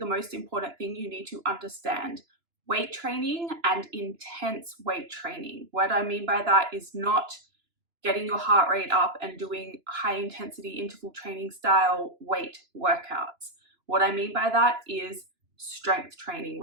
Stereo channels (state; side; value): late; left; 2.9 ms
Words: most important thing you need to understand. Weight training and intense weight training. What I mean by that is not getting your heart rate up and doing high intensity interval training style weight workouts. What I mean by that is strength training,